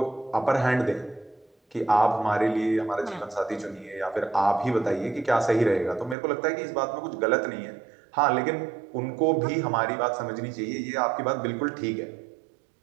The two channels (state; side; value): drops out; left; at 6.2 s